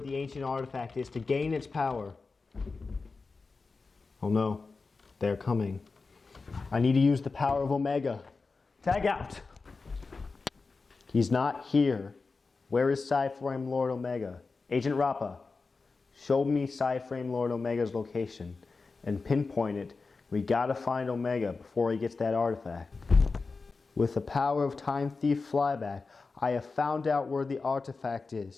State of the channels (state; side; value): quieter; right; 4.2 dB